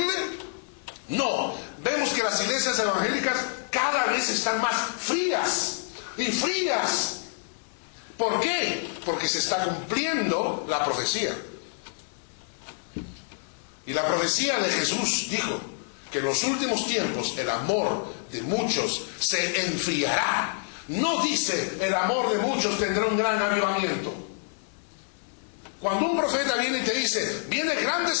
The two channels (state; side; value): silent; right; digital silence